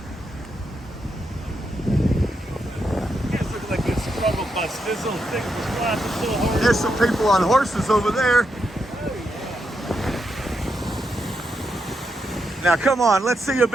Guys look like a struggle bus. This little thing was flashing so hard. There's some people on horses over there. Now come on, let's see a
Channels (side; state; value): both; normal; correlation 0.83